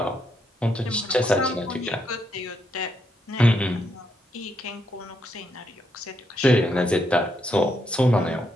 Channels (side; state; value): both; normal; correlation 0.78